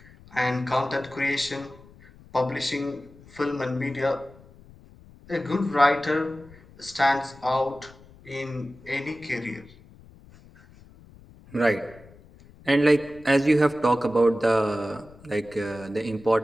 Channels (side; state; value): left; noise; rumble, 23 dB below the sound